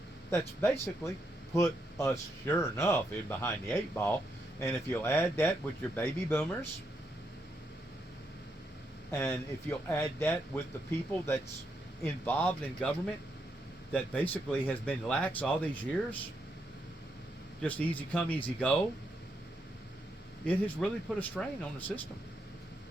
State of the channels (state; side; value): normal; both; correlation 0.80